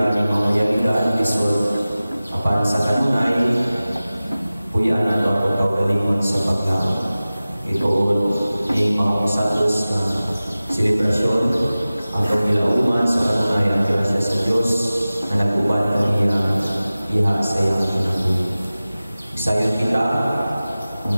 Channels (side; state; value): both; inverted; correlation -0.97